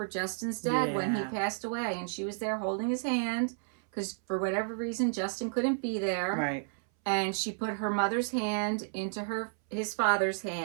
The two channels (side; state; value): left; silent; 57 dB below the other